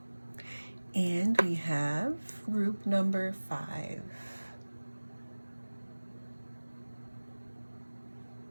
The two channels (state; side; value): inverted; both; correlation -1.00